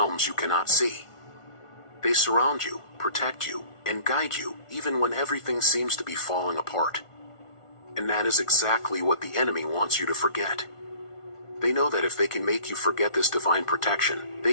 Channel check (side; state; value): right; late; 1.4 ms